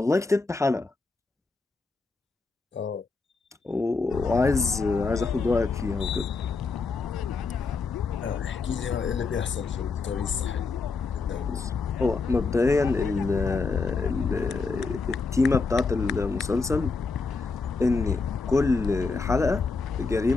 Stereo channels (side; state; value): right; quieter; 4.2 dB